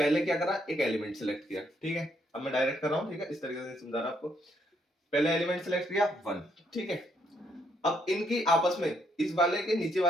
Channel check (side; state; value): both; normal; correlation 0.72